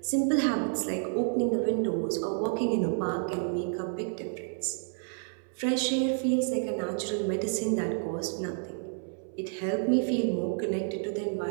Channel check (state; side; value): silent; left; 58 dB below the other